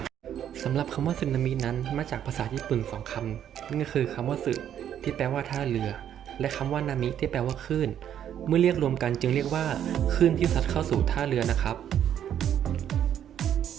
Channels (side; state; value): left; quieter; 10.0 dB